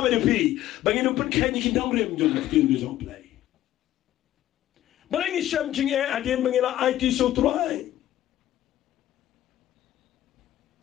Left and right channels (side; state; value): right; quieter; 13.4 dB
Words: de pi bangin pun kenyi ki dong rem jong kin gi jong Blei Balei sham Jingeh adin bangila IT so try